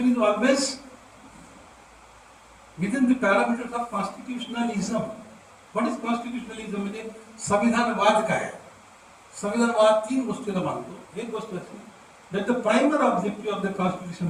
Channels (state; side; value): identical; both; correlation 1.00